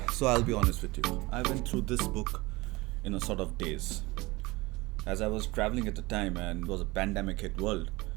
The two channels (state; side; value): quieter; left; 21.9 dB